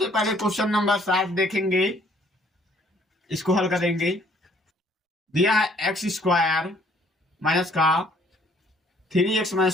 पहले क्वेश्चन नंबर 7 देखेंगे, इसको हल करेंगे। दिया है एक्स स्क्वायर माइनस का 3x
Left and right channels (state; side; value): normal; both; correlation 0.61